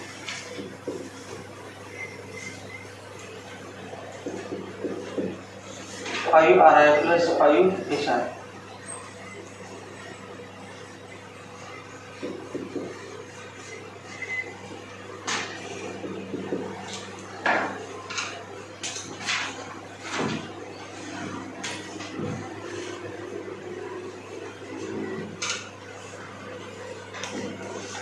5RI plus 5HI.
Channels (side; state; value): both; identical; correlation 1.00